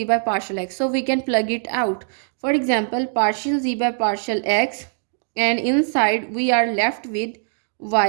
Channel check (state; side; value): silent; left; digital silence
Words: by partial x, so we can plug it out. For example, partial z by partial x, and inside we are left with